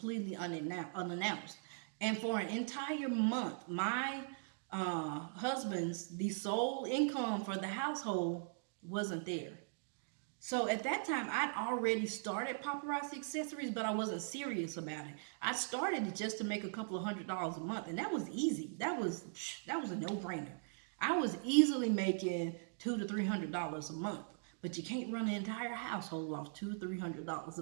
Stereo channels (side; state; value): left; silent; digital silence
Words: unannounced. And for an entire month, my the sole income for the household wasn't there. So at that time, I'd already started Paparazzi Accessories, but I wasn't serious about it. I started it just to make a couple of $100s a month, and that was easy. That was a no-brainer. I was easily making $200 to $300 a month. but you can't run an entire household off $200-300